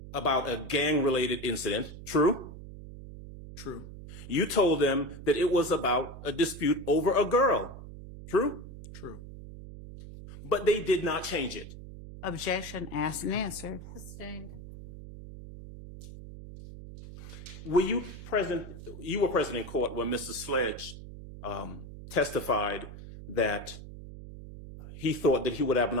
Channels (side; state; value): right; noise; hum, 13 dB below the sound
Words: about a gang-related incident. True? True. You told them that it was about a dispute over a girl. True? True. But they did not change it. Objection asked and answered. Sustained. Were you present? You were present in court when Mr. Sledge testified that he thought that he would have an